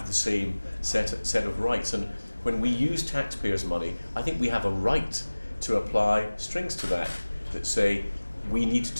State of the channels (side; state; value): both; inverted; correlation -1.00